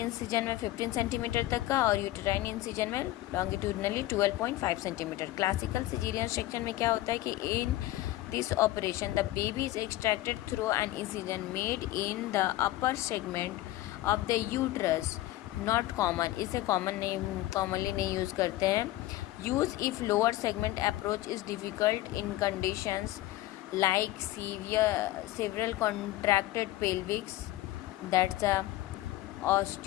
में 15 सेंटीमीटर तक का और यूटेराइन इंसिजन में longitudinally 12.5 centimetre. Classical caesarean section में क्या होता है कि इन this operation the baby is extracted through an incision made in the upper segment of the uterus. Not common, इसे commonly नहीं यूज़ करते हैं. Use if lower segment approach is difficult in conditions like several contracted pelvics, that's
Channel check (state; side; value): quieter; right; 16.3 dB